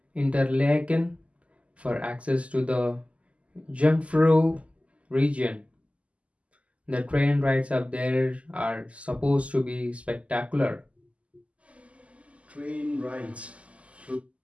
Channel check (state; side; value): late; left; 0.063 ms